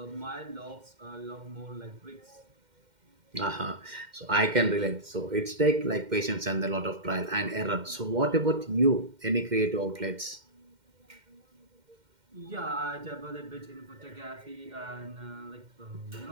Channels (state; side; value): late; left; 2.1 ms